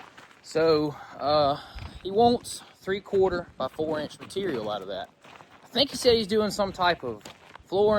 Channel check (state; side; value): identical; both; correlation 1.00